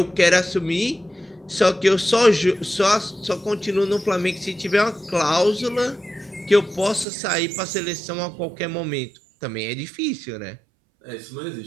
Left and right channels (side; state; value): left; drops out; at 7.1 s